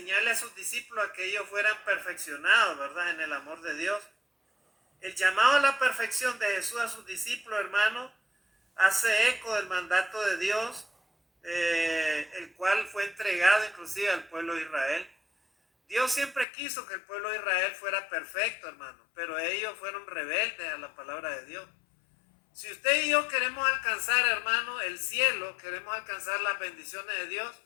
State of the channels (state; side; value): drops out; right; at 16.4 s